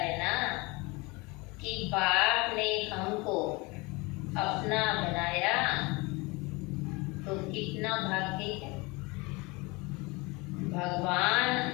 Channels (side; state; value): right; quieter; 25.7 dB